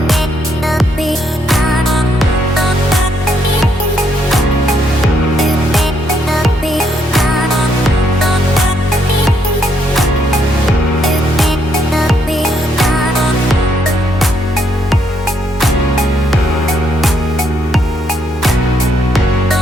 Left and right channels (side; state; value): both; normal; correlation 0.73